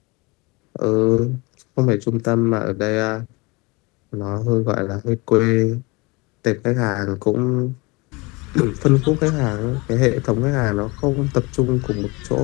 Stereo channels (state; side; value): quieter; right; 26.0 dB